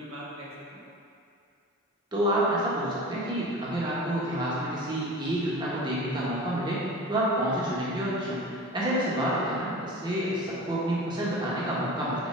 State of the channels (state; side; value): normal; both; correlation 0.36